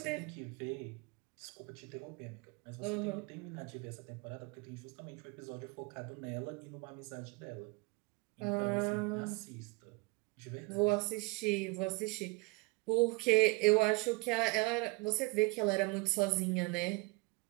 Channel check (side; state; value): left; quieter; 26.6 dB